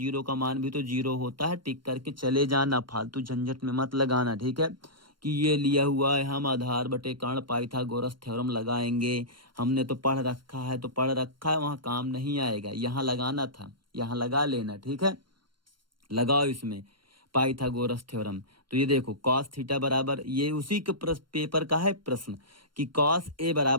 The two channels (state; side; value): late; left; 0.72 ms